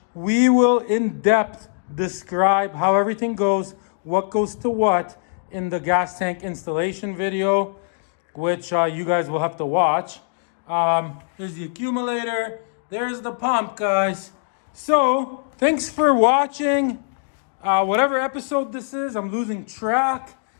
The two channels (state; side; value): silent; right; digital silence